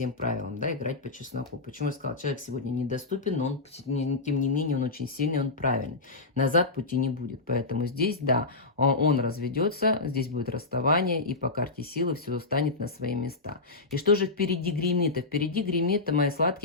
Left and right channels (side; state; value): right; quieter; 3.5 dB